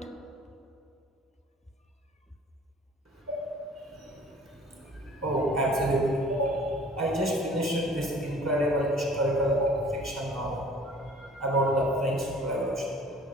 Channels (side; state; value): both; normal; correlation 0.50